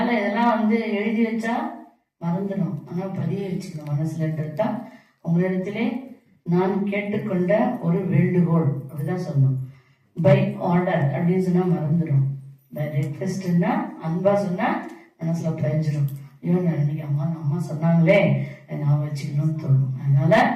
இதெல்லாம் எழுதி வச்சா மறந்துடும், ஆனா பதிய வச்சுக்கணும் மனசுலன்றது தான் உங்களிடத்திலே நான் கேட்டுக்கொண்ட ஒரு வேண்டுகோள். அப்படிதான் சொல்லணும். பை ஆர்டர் அப்படின்னு சொன்னா மறந்துடும். பை ரெக்வெஸ்ட்னா அன்பா சொன்னா மனசுல பதிஞ்சிடும். இவன் இன்னைக்கு அம்மா சொன்னாங்களே நான் வச்சுக்கணும்னு தோணும். அதனால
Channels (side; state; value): both; identical; correlation 1.00